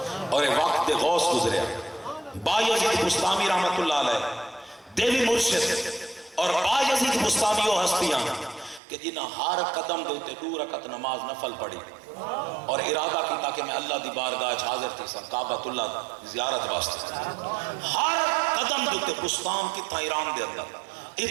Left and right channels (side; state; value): left; drops out; at 8.8 s